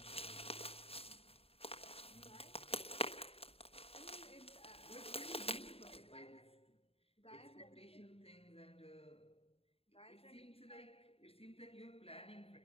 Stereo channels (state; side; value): late; right; 0.28 ms